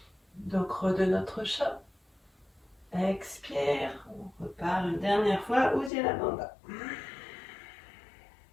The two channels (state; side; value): drops out; right; at 5.9 s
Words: Dos creux de notre chat. Expire, on repart une dernière fois, Uddiyana Bandha.